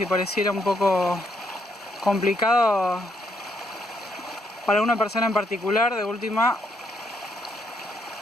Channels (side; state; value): both; normal; correlation 0.74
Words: pareciera un poco complicado para una persona en particular, de última